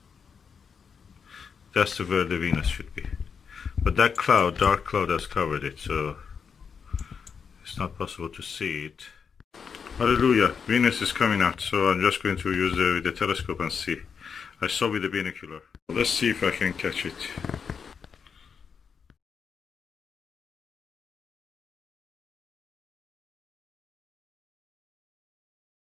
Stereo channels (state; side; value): quieter; right; 6.3 dB